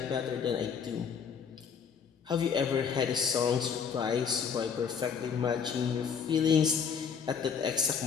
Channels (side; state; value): right; quieter; 6.7 dB